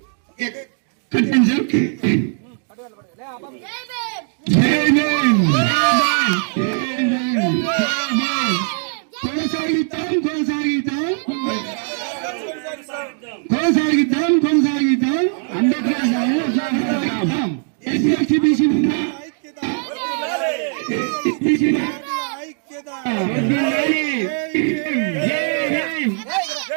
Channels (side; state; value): left; silent; 55 dB below the other